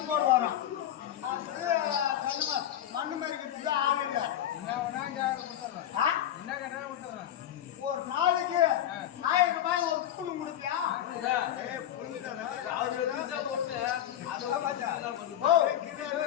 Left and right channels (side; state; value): right; quieter; 11.3 dB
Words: போடுவாராம் மண்ணு மறிக்கிறதுக்கு ஆள் இல்லை ஒரு நாளைக்கு 1000 ரூபாய் ஒரு புல்லு கொடுப்பியா